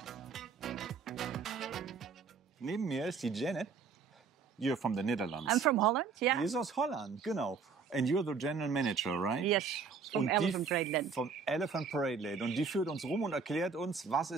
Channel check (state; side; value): quieter; left; 5.4 dB